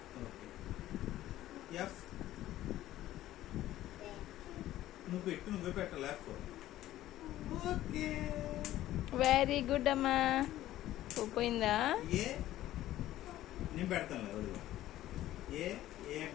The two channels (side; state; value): right; quieter; 14.2 dB